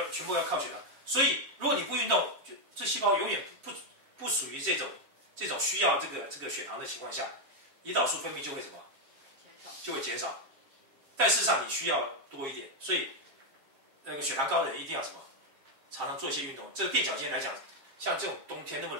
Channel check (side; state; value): left; late; 7.3 ms